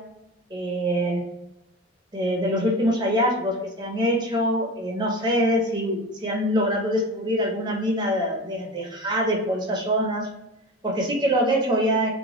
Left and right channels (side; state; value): both; normal; correlation 0.30